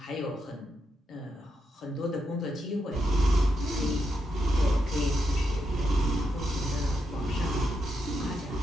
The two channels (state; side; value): normal; both; correlation 0.83